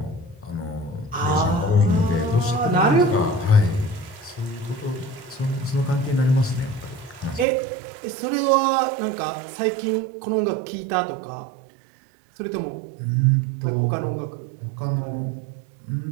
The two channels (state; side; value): drops out; left; at 7.5 s